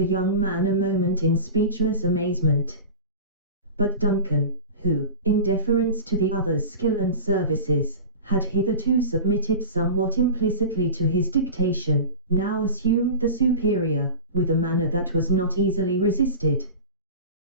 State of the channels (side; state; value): both; inverted; correlation -0.32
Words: young man a moment in speechless amazement. But Duncan, who, in deference to the other's skill and services, had hitherto submitted somewhat implicitly to his dictation, now assumed the superior, with a manner that was not easily resisted.